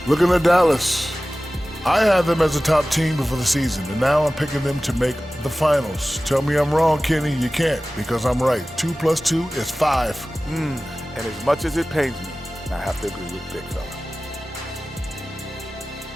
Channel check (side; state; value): both; normal; correlation 0.97